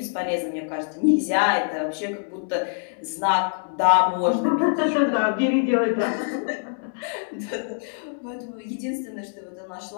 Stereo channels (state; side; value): silent; right; 60 dB below the other